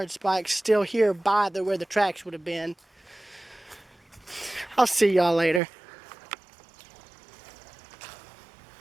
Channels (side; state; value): left; drops out; at 5.6 s